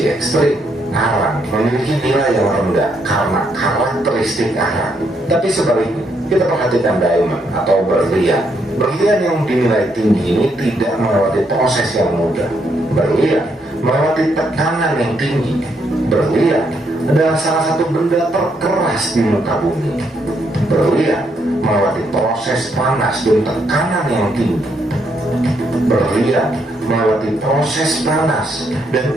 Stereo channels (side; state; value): both; normal; correlation 0.75